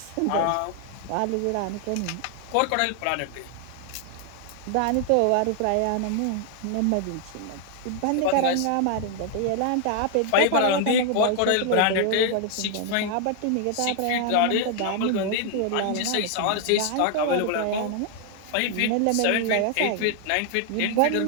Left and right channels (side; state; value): both; different; correlation 0.00